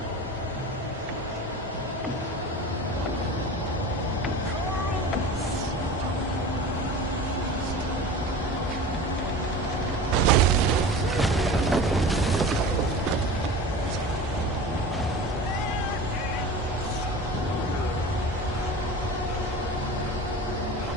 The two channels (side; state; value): both; normal; correlation 0.35